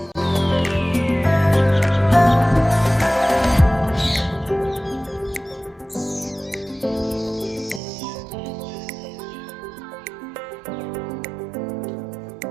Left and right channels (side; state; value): left; drops out; at 7.8 s